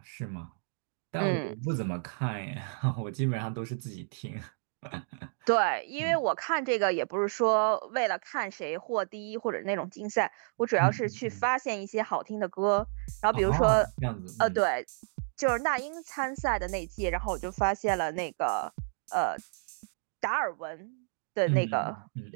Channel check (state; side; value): silent; left; digital silence